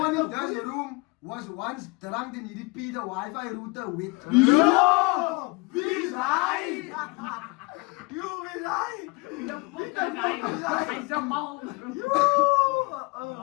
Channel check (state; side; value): quieter; right; 27.3 dB